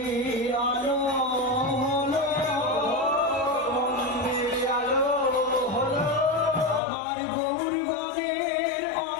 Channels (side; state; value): right; drops out; at 6.8 s